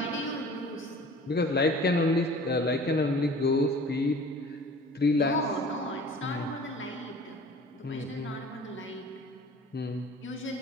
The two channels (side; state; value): both; normal; correlation 0.44